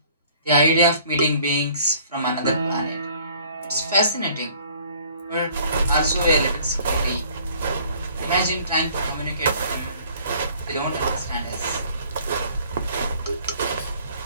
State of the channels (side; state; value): both; inverted; correlation -0.56